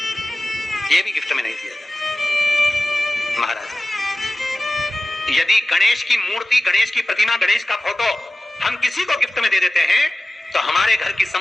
ये भी गिफ्ट में नहीं दिया जाता महाराज। यदि गणेश की मूर्ति, गणेश की प्रतिमा, गणेश का फोटो हम किसी को गिफ्ट में दे देते हैं तो हमारे घर की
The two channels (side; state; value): both; normal; correlation 0.96